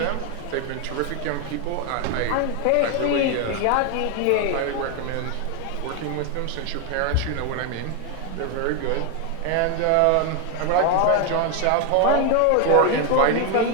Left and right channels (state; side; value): different; both; correlation 0.01